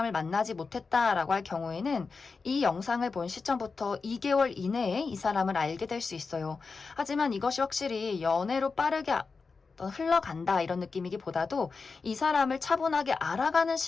만나지 못했다라고 할 경우에는 이 영상을 본 시점부터 2개월 이내에 이 사람을 알게 될 수 있어요. 하지만 이것이 확실히 연애로 빠르게 흘러간다 이런 느낌이기보다도 이 사람을 차분하게 알아가는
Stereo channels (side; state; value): right; quieter; 4.6 dB